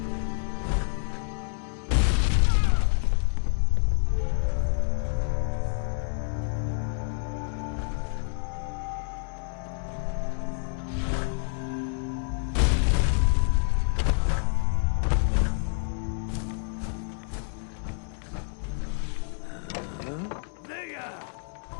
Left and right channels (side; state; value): right; silent; 56 dB below the other